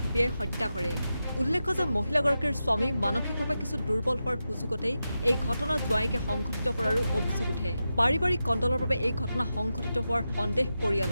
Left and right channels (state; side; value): inverted; both; correlation -0.90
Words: ঘপিয়াই হত্যা কৰে। উল্লেখ্য যে মহিলাগৰাকীৰ স্বামী মানসিকভাৱে কিছু দুৰ্বল হোৱাৰ সুযোগতেই এই ঘটনা জোৱায়েকে সংঘটিত কৰাৰো অভিযোগ উঠে। পাৰিবাৰিক কণ্ডলৰ বাবে এই ঘটনা সংঘটিত হোৱাৰ সন্দেহ